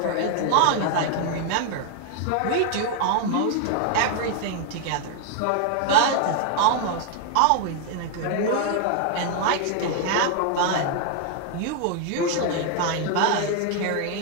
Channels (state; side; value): different; both; correlation 0.00